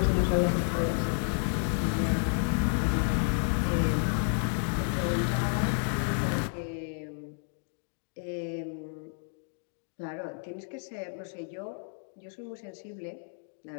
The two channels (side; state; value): right; silent; 57 dB below the other